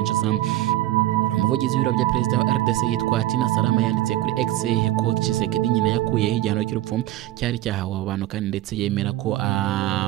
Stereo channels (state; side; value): quieter; left; 15.1 dB